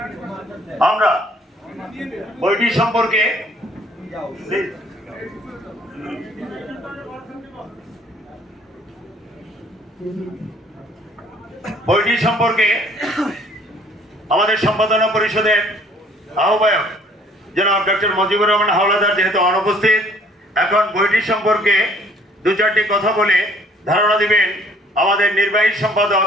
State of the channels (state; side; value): normal; both; correlation 0.58